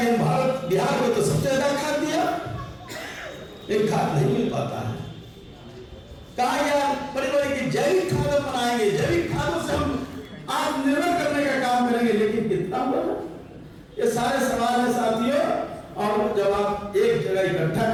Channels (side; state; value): both; identical; correlation 1.00